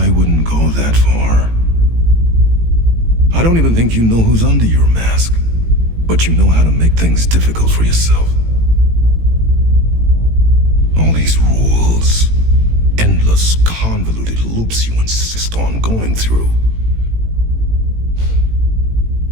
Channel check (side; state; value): left; late; 18 ms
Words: wouldn't go that far. I don't even think you know who's under your mask, but you know how to make things difficult for yourself. All these rules, endless, convoluted loops you insist on going through.